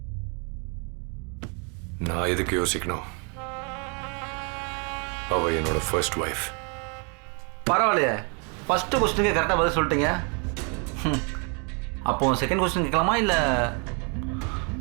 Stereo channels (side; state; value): left; quieter; 36.0 dB